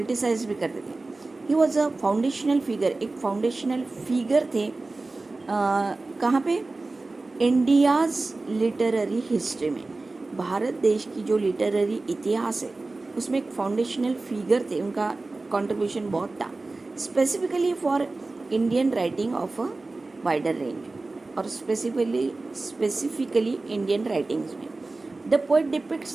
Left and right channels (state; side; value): quieter; left; 3.3 dB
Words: भी करते थे. He was a foundational figure, एक फाउंडेशनल फिगर थे. कहाँ पे? इंडियाज़ लिटरेरी हिस्ट्री में, भारत देश की जो लिटरेरी इतिहास है उसमें एक फाउंडेशनल फिगर थे. उनका कंट्रीब्यूशन बहुत था, specifically for Indian writing of a wider range, और स्पेसिफिकली इंडियन राइटिंग्स में. The poet